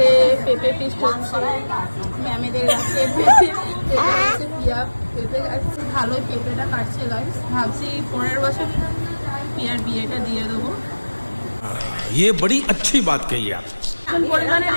পেঁপে ফিস্ট হচ্ছে, ম্যামেদের কাছে পেঁপে হচ্ছে, পিয়া পেঁপে কাটছে, ভালোই পেঁপেটা কাটছে গাইস। ভাবছি পরের বছর পিয়ার বিয়েটা দিয়ে দেবো। ये बड़ी अच्छी बात कही आप। এখন পরিমাণে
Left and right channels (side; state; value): both; inverted; correlation -1.00